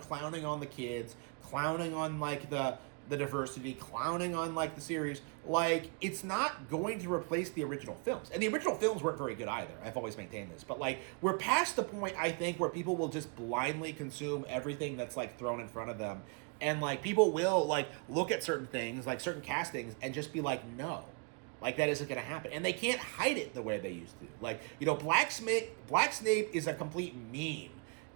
clowning on the kids, clowning on, like, the diversity, clowning on, like, the series. Like, it's not going to replace the original films. And the original films weren't very good either. I've always maintained this. But, like, we're past the point, I think, where people will just blindly consume everything that's, like, thrown in front of them. And, like, people will, like, look at certain things, like, certain castings, and just be like, no. Like, that isn't going to happen. And they can't hide it the way they used to. Like, you know, Black Snape is a complete meme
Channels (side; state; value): left; quieter; 35.0 dB